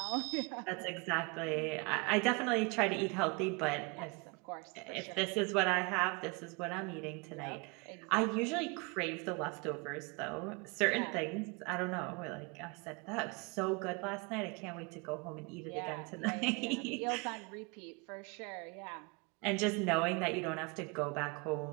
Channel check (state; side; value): quieter; left; 29.3 dB